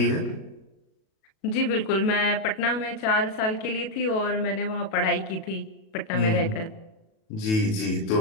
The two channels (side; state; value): right; late; 37 ms